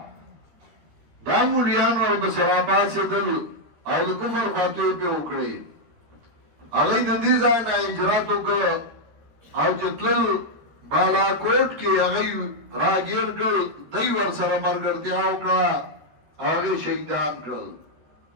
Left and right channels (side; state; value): left; late; 13 ms